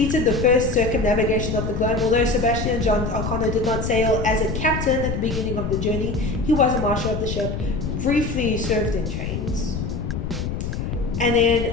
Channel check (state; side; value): noise; left; rumble, 4 dB below the sound